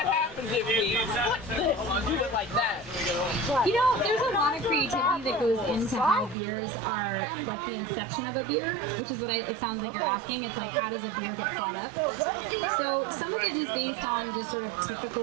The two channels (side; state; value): left; drops out; at 6.4 s